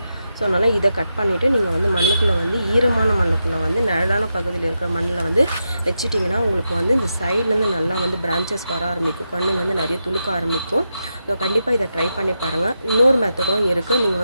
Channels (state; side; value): inverted; both; correlation -0.87